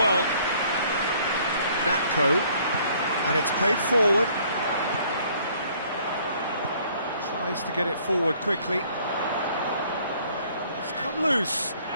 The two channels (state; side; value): inverted; both; correlation -0.60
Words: Natko, and it's played forward. Tries to get it forward quickly. It's come loose.